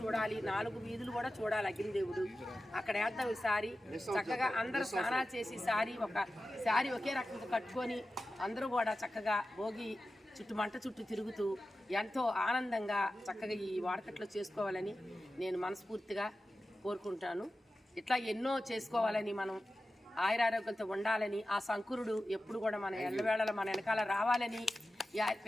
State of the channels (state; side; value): normal; both; correlation 0.94